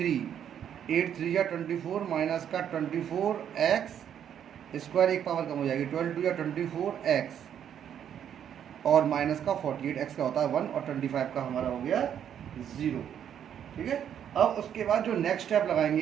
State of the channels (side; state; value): left; quieter; 9.2 dB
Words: 8 3 या 24 माइनस का 24x स्क्वायर, एक पावर कम हो जाएगी, 12 2 या 24x और माइनस का 48x का होता है 1 और 25 का हमारा हो गया 0। ठीक है। अब उसके बाद जो नेक्स्ट स्टेप